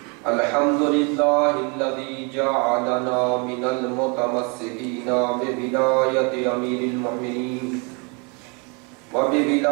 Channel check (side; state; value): left; quieter; 33.0 dB